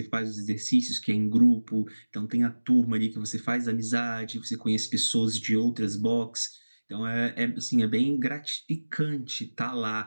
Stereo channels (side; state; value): both; inverted; correlation -1.00